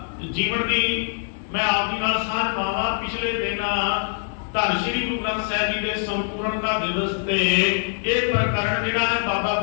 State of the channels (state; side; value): silent; right; digital silence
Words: ਜੀਵਨ ਦੀ ਮੈਂ ਆਪ ਜੀ ਨਾਲ ਸਾਂਝ ਪਾਵਾਂ। ਪਿਛਲੇ ਦਿਨਾਂ ਧੰਨ ਸ਼੍ਰੀ ਗੁਰੂ ਗ੍ਰੰਥ ਸਾਹਿਬ ਜੀ ਦੇ ਸੰਪੂਰਨਤਾ ਦਿਵਸ ਤੇ ਇਹ ਪ੍ਰਕਰਣ ਜਿਹੜਾ ਹੈ ਬਾਬਾ